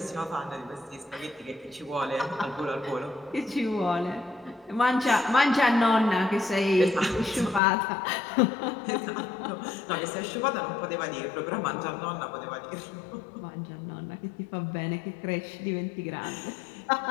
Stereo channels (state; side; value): drops out; right; at 7.6 s